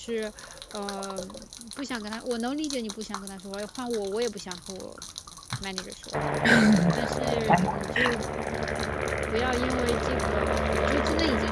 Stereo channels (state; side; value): identical; both; correlation 1.00